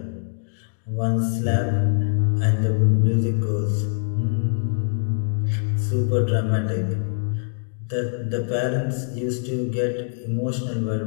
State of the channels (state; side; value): silent; right; digital silence